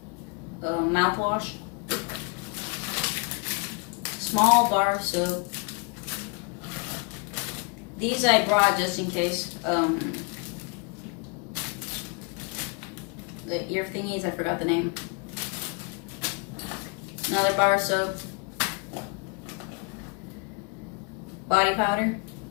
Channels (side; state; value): right; quieter; 34.1 dB